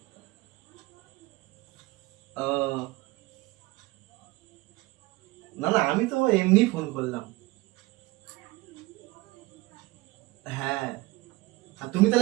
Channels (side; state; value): left; quieter; 21.5 dB